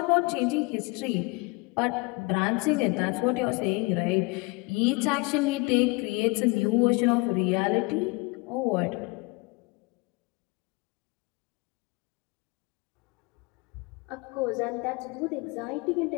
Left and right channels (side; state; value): right; quieter; 26.4 dB